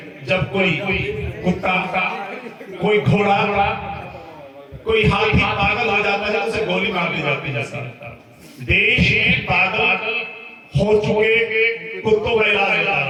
जब कोई कुत्ता, कोई घोड़ा, कोई हाथी पागल हो जाता है तो उसे गोली मार दी जाती है। देश में पागल हो चुके कुत्तों का इलाज होता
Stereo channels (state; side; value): identical; both; correlation 1.00